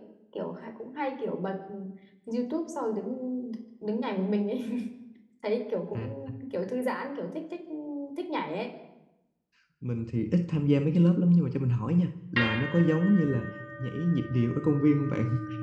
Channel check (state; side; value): identical; both; correlation 1.00